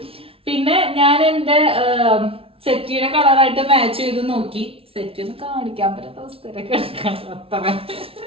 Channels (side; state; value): left; late; 0.27 ms